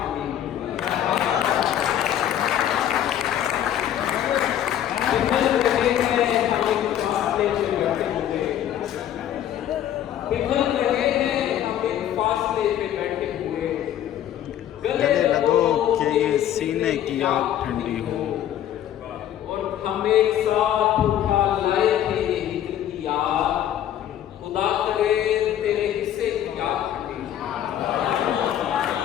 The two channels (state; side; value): quieter; right; 11.0 dB